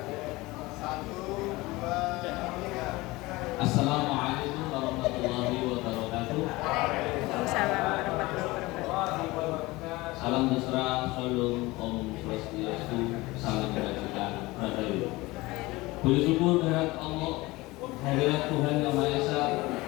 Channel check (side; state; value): right; quieter; 21.1 dB